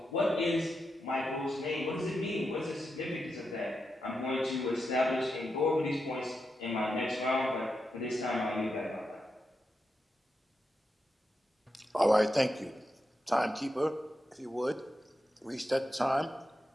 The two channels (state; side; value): normal; both; correlation 0.87